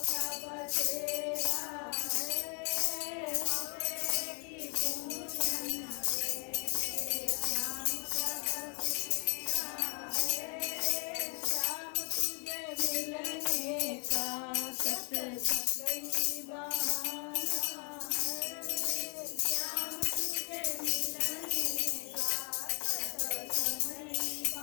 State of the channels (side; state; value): right; quieter; 37.7 dB